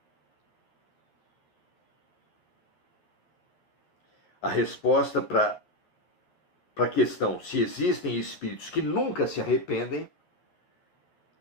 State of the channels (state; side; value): late; right; 12 ms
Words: A resposta para a questão se existem espíritos que nunca se arrependem